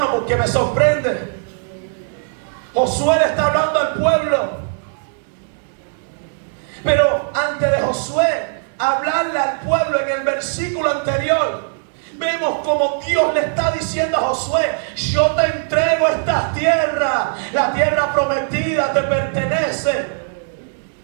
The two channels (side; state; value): left; silent; digital silence